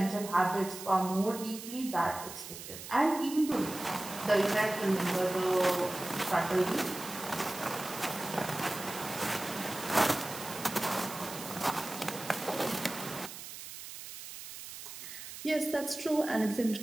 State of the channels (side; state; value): right; noise; hiss, 11 dB below the sound